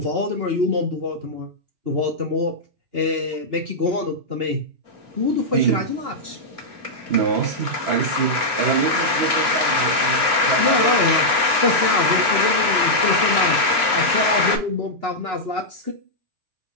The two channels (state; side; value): late; left; 2.7 ms